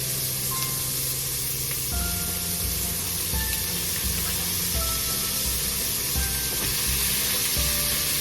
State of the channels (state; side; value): identical; both; correlation 1.00